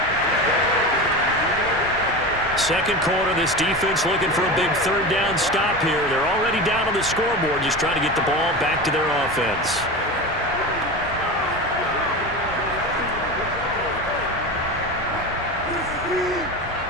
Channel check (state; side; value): normal; both; correlation 0.26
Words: Second quarter, this defense looking for a big 3rd down stop here. They're already down on the scoreboard, just trying to get the ball back to their offense.